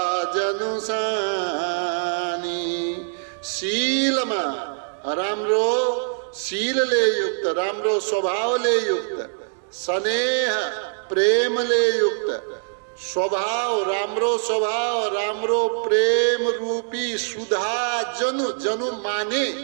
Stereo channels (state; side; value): silent; left; digital silence